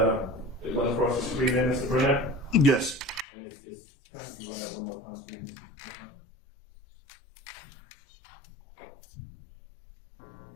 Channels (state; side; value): drops out; right; at 3.2 s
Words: went across the screen there, Mr. Burnett? Yes. And it's kind of like that one more time, please.